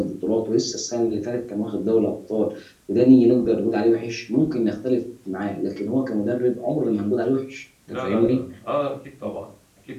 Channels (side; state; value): both; identical; correlation 1.00